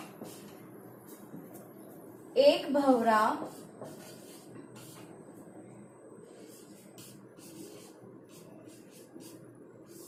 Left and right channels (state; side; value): identical; both; correlation 1.00